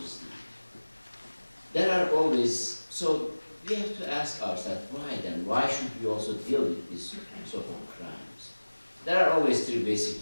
There are always, so we have to ask ourselves, why then? Why should we also deal with these sort of crimes? There are always three basic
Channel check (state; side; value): inverted; both; correlation -1.00